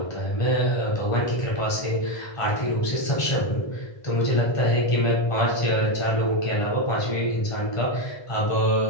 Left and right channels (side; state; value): right; late; 1.3 ms